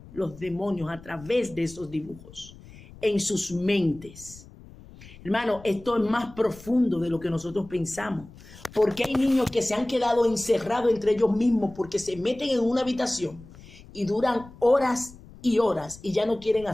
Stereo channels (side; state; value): left; noise; rumble, 20 dB below the sound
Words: los demonios a través de esos dibujos en sus mentes. Hermano, esto es más profundo de lo que nosotros pensamos. Porque hay niños que se han quedado encerrados entre ellos mismos porque se meten en una habitación y duran horas y horas y ya no quieren